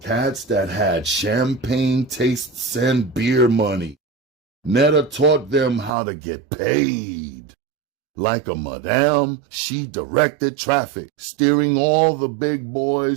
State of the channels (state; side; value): drops out; left; at 5.9 s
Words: Cats that had champagne tastes and beer money. Netta taught them how to get paid. Like a madame, she directed traffic, steering all the big